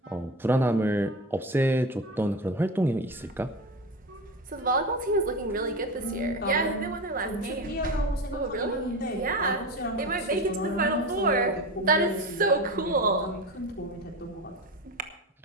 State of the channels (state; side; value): normal; both; correlation 0.26